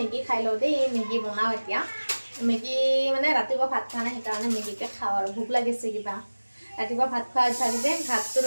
খাই লওঁ দেই, মেগী বনাওঁ এতিয়া। মেগী মানে ৰাতিপুৱা ভাত খোৱা নাই, সেইকাৰণে মেগীকে খাওঁ আৰু ভোক লাগিছে কিবা। ৰাতিপুৱা ভাত খোৱা অভ্যাস যে, ভাতটো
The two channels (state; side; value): inverted; both; correlation -1.00